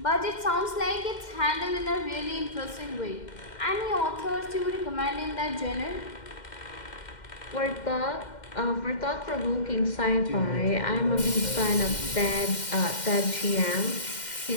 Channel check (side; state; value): right; late; 2.1 ms